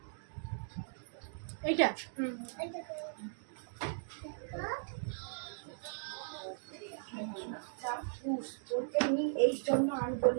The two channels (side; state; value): left; silent; digital silence